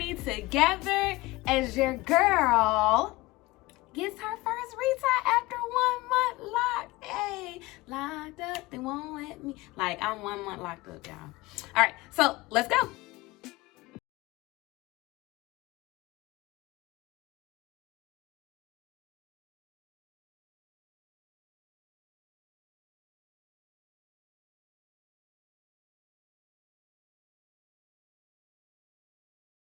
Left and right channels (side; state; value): right; quieter; 20.4 dB